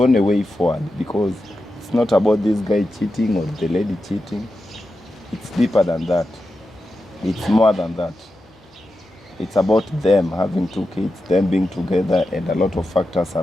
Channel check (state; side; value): normal; both; correlation 0.90